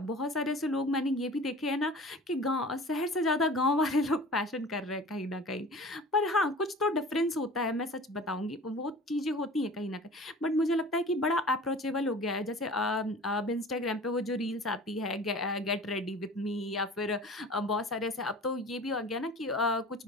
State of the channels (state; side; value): normal; both; correlation 0.41